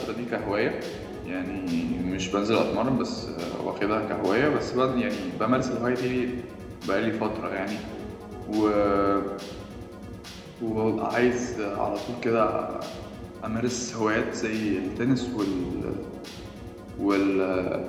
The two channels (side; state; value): both; identical; correlation 1.00